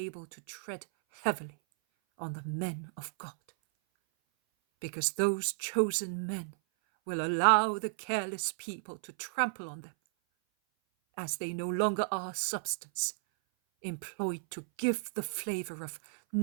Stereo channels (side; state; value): left; silent; 55 dB below the other